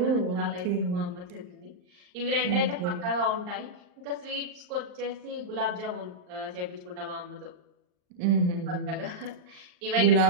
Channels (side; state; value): left; late; 39 ms